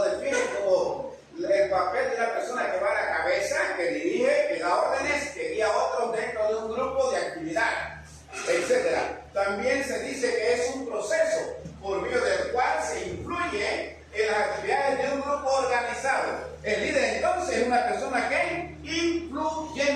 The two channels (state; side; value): identical; both; correlation 1.00